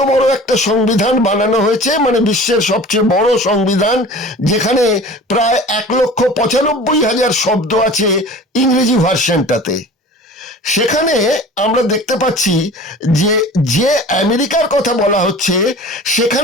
বড় একটা সংবিধান বানানো হয়েছে, মানে বিশ্বের সবচেয়ে বড় সংবিধান, যেখানে প্রায় 1,95,000 শব্দ আছে ইংরেজি ভার্সনটাতে। সেখানে আমরা দেখতে পাচ্ছি যে যে আমেরিকার কথা বলা হচ্ছে,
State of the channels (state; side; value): normal; both; correlation 0.41